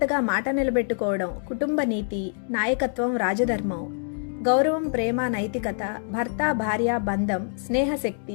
మాట నిలబెట్టుకోవడం, కుటుంబ నీతి, నాయకత్వం, రాజధర్మం, గౌరవం, ప్రేమ, నైతికత, భర్త భార్య బంధం,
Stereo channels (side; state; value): right; silent; digital silence